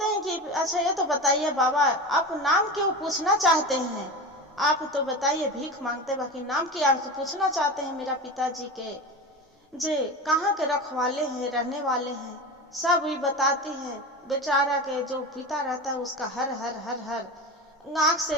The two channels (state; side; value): normal; both; correlation 0.27